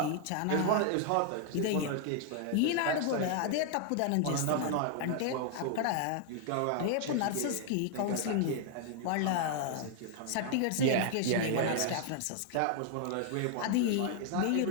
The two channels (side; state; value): both; different; correlation 0.00